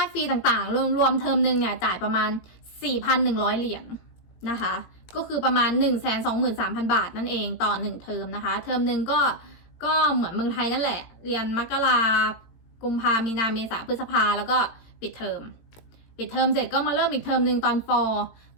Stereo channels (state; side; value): late; right; 18 ms